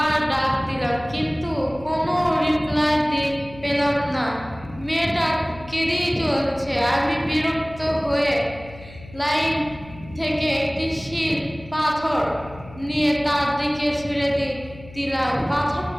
ডাক দিলাম, কিন্তু কোনো রিপ্লাই পেলাম না। মেয়েটা কেঁদেই চলছে। আমি বিরক্ত হয়ে লাইন থেকে একটি শিল পাথর নিয়ে তার দিকে ছুঁড়ে দিলাম।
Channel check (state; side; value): noise; left; hum, 18 dB below the sound